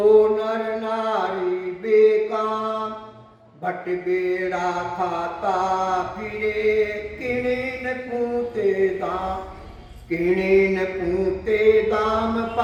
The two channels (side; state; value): both; identical; correlation 1.00